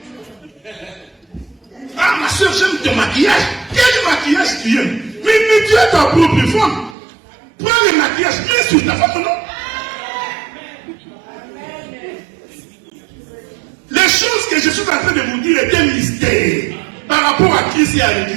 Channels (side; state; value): left; drops out; at 7.0 s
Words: Ah, ma soeur, j'aime ton maquillage. Quel maquillage tu aimes? Mais tu es ta propre femme. Prends le maquillage, mets sur ta femme, non? Les choses que je suis en train de vous dire est un mystère par rapport à Christ et à